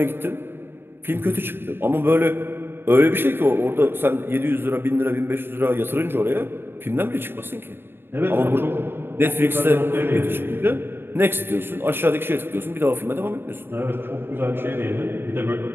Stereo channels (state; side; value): late; left; 0.11 ms